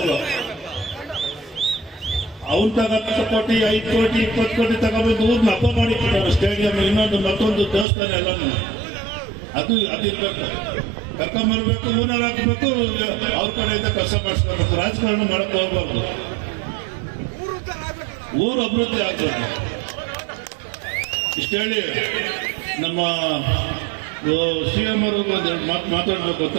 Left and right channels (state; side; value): drops out; left; at 7.9 s